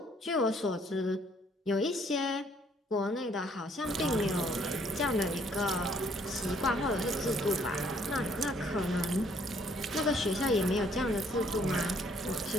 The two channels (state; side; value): normal; both; correlation 0.64